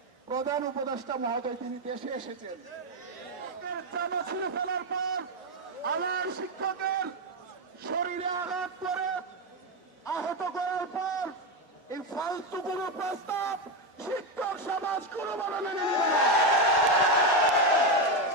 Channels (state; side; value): normal; both; correlation 0.09